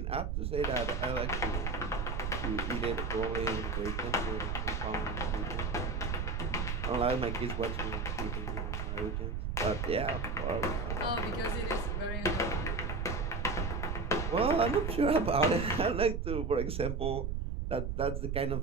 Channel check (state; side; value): noise; right; rumble, 2 dB below the sound